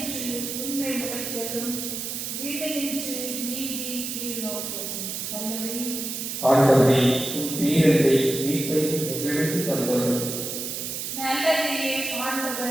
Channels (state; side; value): noise; right; hiss, 5 dB below the sound